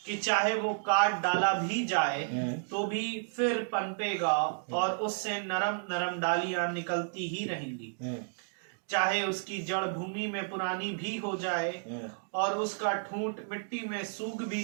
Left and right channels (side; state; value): left; silent; digital silence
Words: कि चाहे वो काट डाला भी जाए तो भी फिर पनपेगा, और उससे नरम नरम डालियां निकलती ही रहेंगी। चाहे उसकी जड़ भूमि में पुरानी भी हो जाए और उसका ठूंठ मिट्टी में सूख